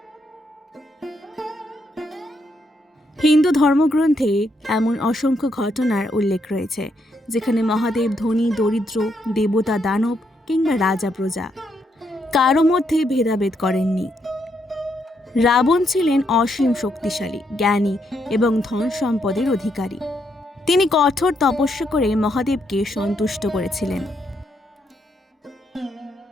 হিন্দু ধর্মগ্রন্থে এমন অসংখ্য ঘটনার উল্লেখ রয়েছে যেখানে মহাদেব ধনী, দরিদ্র, দেবতা, দানব কিংবা রাজা, প্রজা কারো মধ্যে ভেদাভেদ করেননি। রাবণ ছিলেন অসীম শক্তিশালী, জ্ঞানী এবং ধন সম্পদের অধিকারী। তিনি কঠোর তপস্যা করে মহাদেবকে সন্তুষ্ট করেছিলেন।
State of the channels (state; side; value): normal; both; correlation 0.77